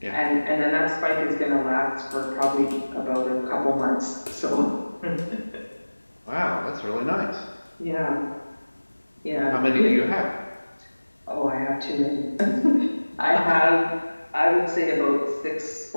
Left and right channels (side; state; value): both; inverted; correlation -1.00